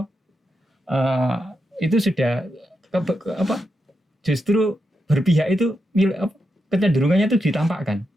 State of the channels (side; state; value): both; normal; correlation 0.85